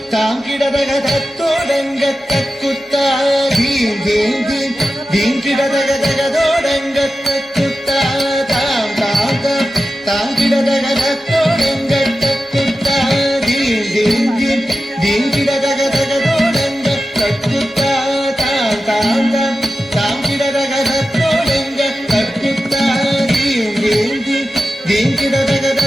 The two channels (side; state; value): both; normal; correlation 0.92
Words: താങ്കിടതക തത്തോടങ്ക തക്കുത്ത ധീം ധീം ധീം ധീം കിടതക തകതോടങ്ക തക്കുത്ത താം താം താം താങ്കിടതക തത്തോടങ്ക തക്കുത്ത ധീം ധീം ധീം ധീം കിടതക തകതോടങ്ക തക്കുത്ത താം താം താം താങ്കിടതക തത്തോടങ്ക തക്കുത്ത ധീം ധീം ധീം ധീം കിടതക